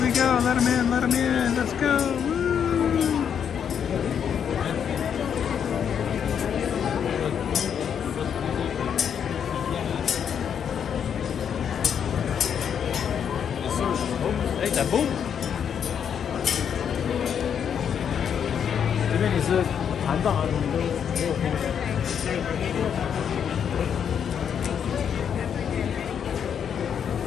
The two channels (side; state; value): right; quieter; 8.0 dB